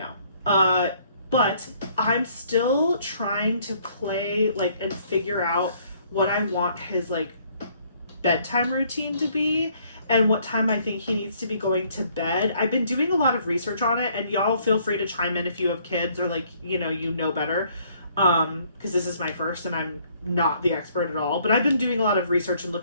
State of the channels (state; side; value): inverted; both; correlation -0.64